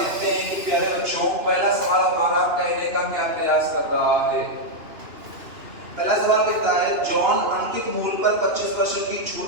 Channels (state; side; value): late; left; 2.9 ms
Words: हैं कि प्यारे बच्चों, पहला सवाल हमारा कहने का क्या प्रयास कर रहा है। पहला सवाल कहता है, जॉन अंकित मूल्य पर 25% की छूट